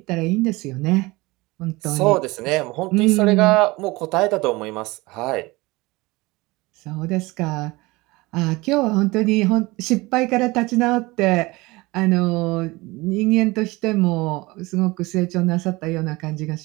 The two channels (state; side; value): quieter; left; 22.3 dB